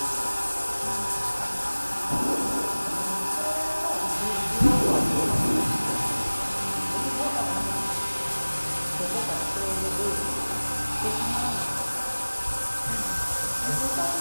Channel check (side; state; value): both; inverted; correlation -1.00